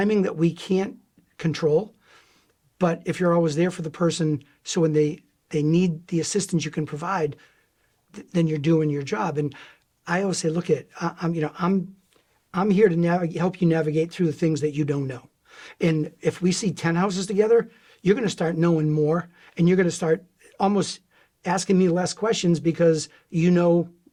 that we can't control. But if you're always there for the person, so when they need the assistance you can provide, then you're doing your job. And I always say, look, I'm here to help you navigate through the things that you don't know. And if we see 10 houses together, you're going to start knowing more, and you're going to start almost asking me less questions because you know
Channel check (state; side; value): identical; both; correlation 1.00